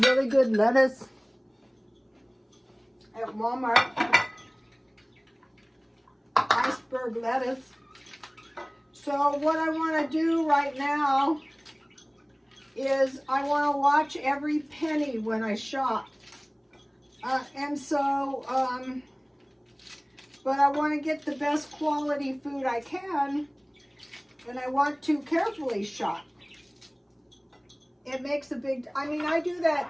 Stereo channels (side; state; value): both; identical; correlation 1.00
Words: really good lettuce at Walmart. Iceberg lettuce. So what I want to do right now is I want to watch every penny when I shop. But I want to get the best quality food I can, and I want to carefully shop. It makes a big, I mean, I do